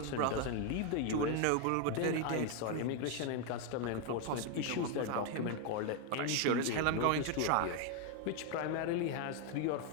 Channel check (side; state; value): both; different; correlation 0.01